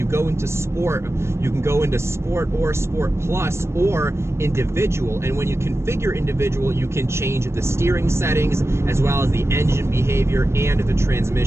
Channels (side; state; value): left; late; 0.13 ms